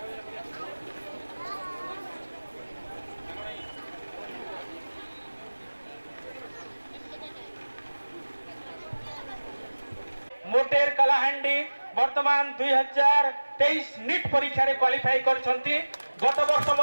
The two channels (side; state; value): both; inverted; correlation -1.00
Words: मोटेर कलाहांडी वर्तमान 2023 नीट परीक्षा रे क्वालिफाई करछंती। गत वर्ष